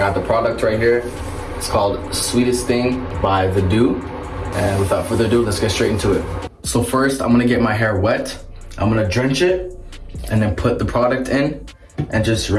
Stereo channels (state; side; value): identical; both; correlation 1.00